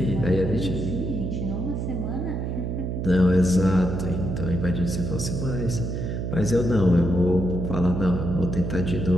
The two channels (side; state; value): right; noise; hum, 3 dB below the sound